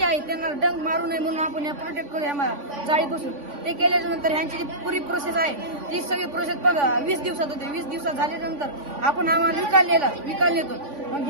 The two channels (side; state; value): left; late; 3.5 ms